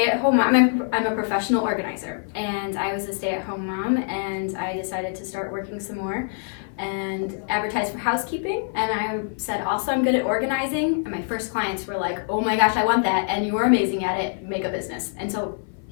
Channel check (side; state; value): right; silent; 56 dB below the other